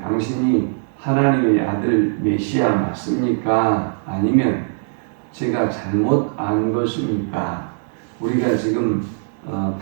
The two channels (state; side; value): silent; left; 65 dB below the other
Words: 하나님의 아들 메시아 맞습니까? 아니면 제가 잘못 안 것입니까? 우리가 지금